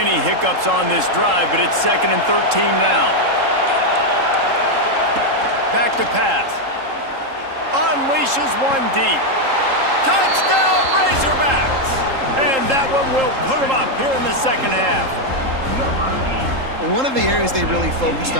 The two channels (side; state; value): left; late; 3.8 ms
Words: hiccups on this drive, but it's 2nd and 13 now. Back to pass. Unleashes one deep. Touchdown, Razorbacks! And that one will put them up here in the second half. Well, one of the areas they really focused